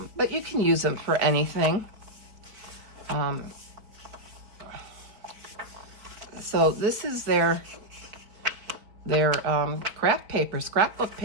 but you can use them for anything. So this is their craft paper, scrapbook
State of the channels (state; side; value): late; left; 4.3 ms